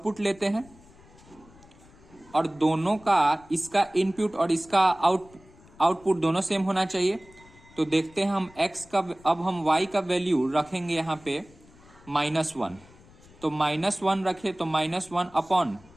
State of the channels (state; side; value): noise; left; rumble, 25 dB below the sound